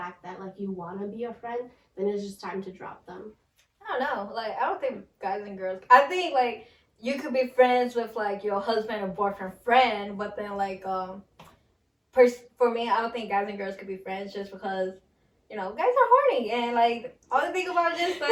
that like you want to be a friend, then it's just time to drop them. I don't know. Like, I don't think guys and girls. I think like you could be friends with like your husband or boyfriend friend, but then like for me, I don't think guys and girls could be friends just because guys are horny and like all they think about is just like.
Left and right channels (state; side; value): identical; both; correlation 1.00